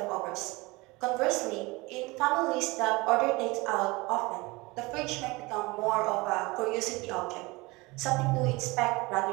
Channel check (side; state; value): left; quieter; 23.7 dB